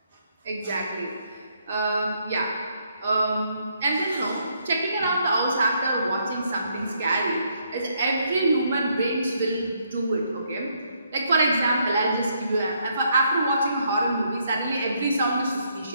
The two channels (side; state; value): both; inverted; correlation -0.73